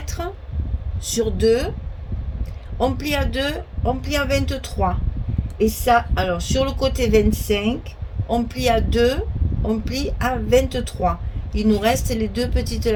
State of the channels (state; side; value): identical; both; correlation 1.00